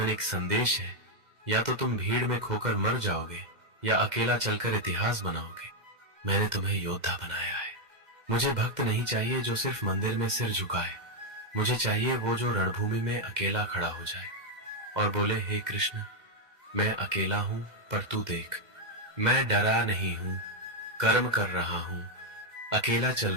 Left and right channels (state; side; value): late; left; 2.1 ms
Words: एक संदेश है, या तो तुम भीड़ में खोकर मर जाओगे या अकेला चलकर इतिहास बनाओगे। मैंने तुम्हें योद्धा बनाया है। मुझे भक्त नहीं चाहिए जो सिर्फ मंदिर में सिर झुकाए। मुझे चाहिए वो जो रणभूमि में अकेला खड़ा हो जाए और बोले, हे कृष्ण, मैं अकेला हूं पर तू देख, मैं डरा नहीं हूं, कर्म कर रहा हूं, अकेला चल